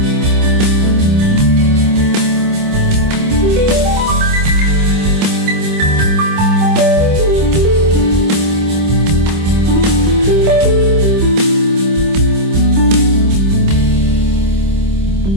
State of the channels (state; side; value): late; left; 26 ms